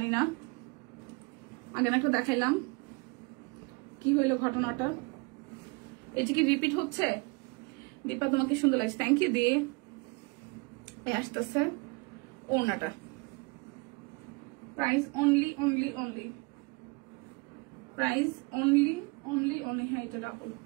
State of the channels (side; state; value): left; quieter; 28.9 dB